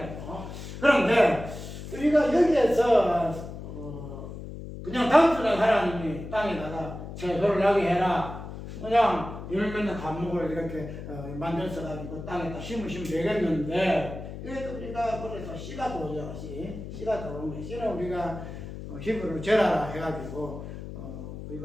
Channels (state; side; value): noise; left; hum, 10 dB below the sound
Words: 거예요. 그런데 우리가 여기에서 그냥 단순한 하나님이 땅에다가 채소를 나게 해라. 그냥 열매는 과목을 이렇게 만들어서 가지고 땅에다 심으시면 되겠는데 이것도 우리가 그래서 씨가 도죠. 씨가 도는 거예요. 씨는 우리가 히브리로 제라라 해가지고